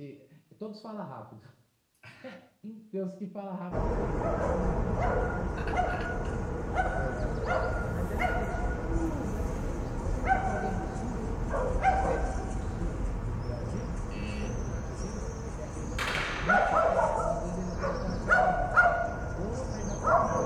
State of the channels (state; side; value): identical; both; correlation 1.00